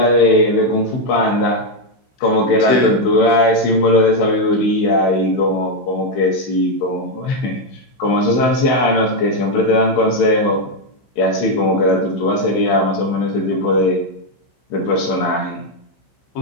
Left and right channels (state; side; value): late; right; 16 ms